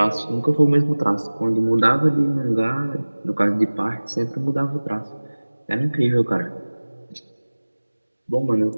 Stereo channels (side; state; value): both; inverted; correlation -1.00